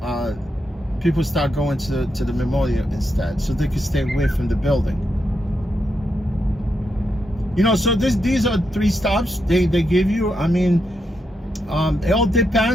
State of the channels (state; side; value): normal; both; correlation 0.83